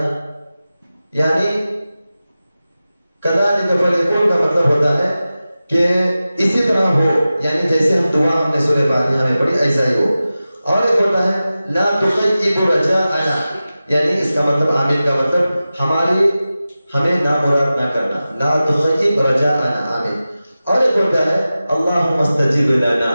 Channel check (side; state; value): both; inverted; correlation -0.95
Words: یعنی کذالک فلیکن کا مطلب ہوتا ہے کہ اسی طرح ہو، یعنی جیسے ہم دعا ہم نے سورہ فاتحہ میں پڑھی ایسا ہی ہو۔ اور ایک ہوتا ہے لا تخیب رجاءنا، یعنی اس کا مطلب آمین کا مطلب ہمیں نامراد نہ کرنا، لا تخیب رجاءنا، آمین۔ اور ایک ہوتا ہے اللہم استجب لنا،